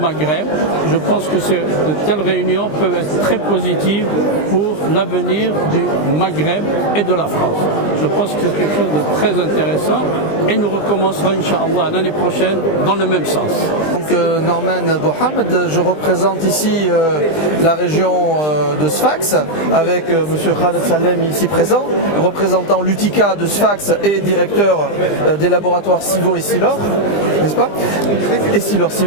Je pense que de telles réunions peuvent être très positives pour l'avenir du Maghreb et de la France. Je pense que c'est quelque chose de très intéressant et nous recommencerons, Inch'Allah, l'année prochaine dans le même sens. Donc Norman Bohamed, je représente ici la région de Sfax avec M. Khaled Salem ici présent, représentant l'UTICA de Sfax et directeur des laboratoires Civo et Silor, n'est-ce pas? Et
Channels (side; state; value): right; late; 20 ms